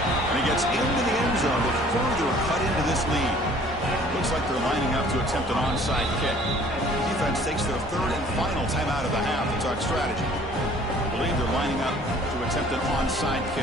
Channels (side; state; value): both; normal; correlation 0.54